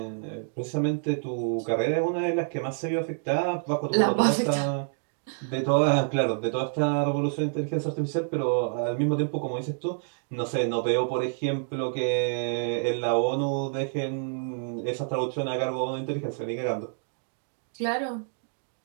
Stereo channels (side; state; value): left; silent; digital silence